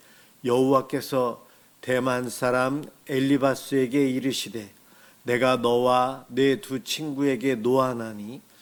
여호와께서 대만 사람 엘리바스에게 이르시되 내가 너와 내 두 친구에게 노하나니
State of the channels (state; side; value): identical; both; correlation 1.00